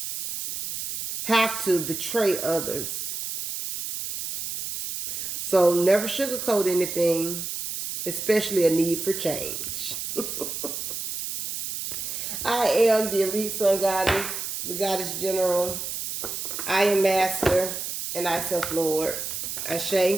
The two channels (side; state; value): right; noise; hiss, 5 dB below the sound